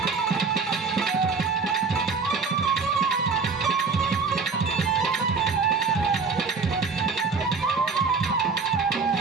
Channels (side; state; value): left; quieter; 4.9 dB